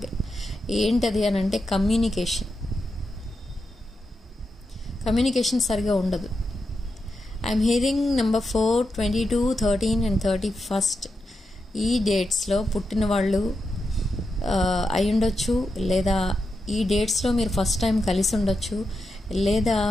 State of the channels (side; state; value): both; normal; correlation 0.87